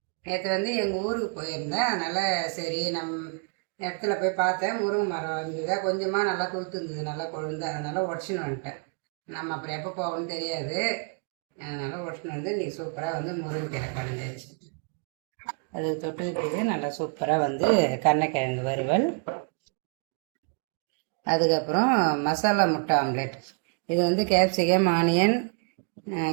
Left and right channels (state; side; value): quieter; left; 38.7 dB